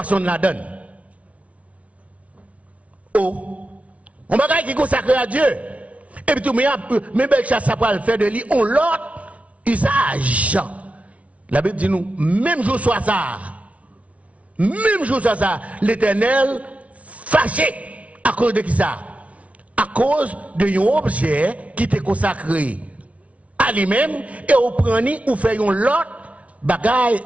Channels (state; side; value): late; left; 0.065 ms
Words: de la donne. Oh, on va qui consacré à Dieu. Et puis tout, mais Belshazzar va le faire de lui, on l'autre usage. La Bible dit nous, même jour soit ça, l'Éternel fâché à cause de qui ça? À cause d'un objet qui était consacré à lui-même et au prendre ou fait un lot bagaille